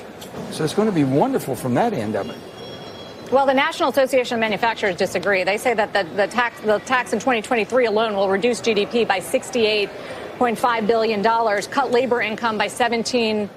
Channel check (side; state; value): both; identical; correlation 1.00